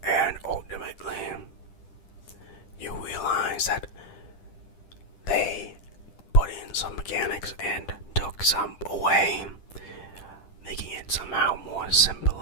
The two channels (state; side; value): late; right; 10 ms